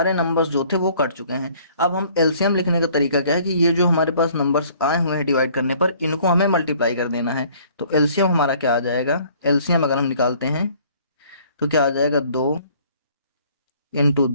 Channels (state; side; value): inverted; both; correlation -0.57